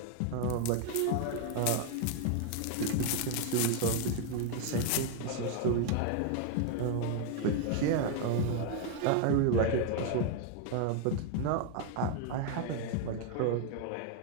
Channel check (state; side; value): different; both; correlation 0.00